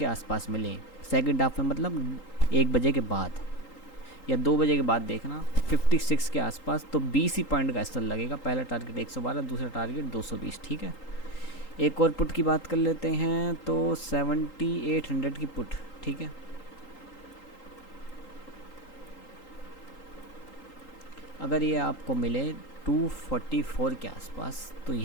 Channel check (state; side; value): late; right; 3.8 ms